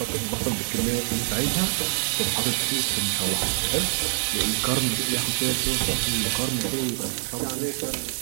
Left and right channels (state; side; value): silent; left; digital silence